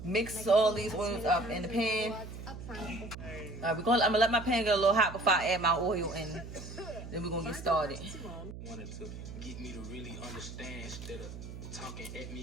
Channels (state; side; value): noise; right; hum, 11 dB below the sound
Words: mix all these oils up in the pan. I'm gonna let my pan get a little hot before I add my oil in. Then we're gonna get started. Wanted to get me to really understand instead of talking at me,